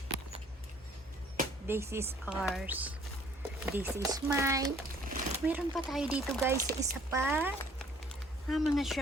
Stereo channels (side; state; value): both; normal; correlation 0.58